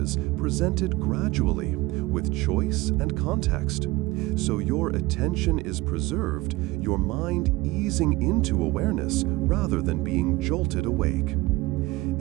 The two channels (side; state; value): left; quieter; 20.6 dB